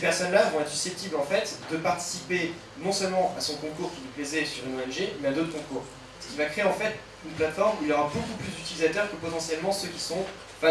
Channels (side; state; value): both; identical; correlation 1.00